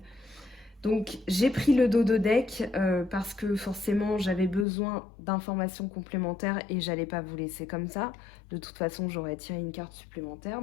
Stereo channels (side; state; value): right; drops out; at 4.7 s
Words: Donc j'ai pris le dos de deck parce que forcément j'avais besoin d'informations complémentaires et j'allais pas vous laisser comme ça. De toute façon j'aurais tiré une carte supplémentaire,